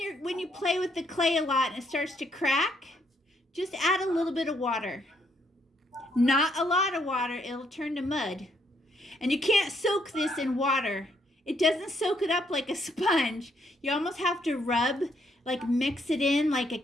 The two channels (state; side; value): normal; both; correlation 0.72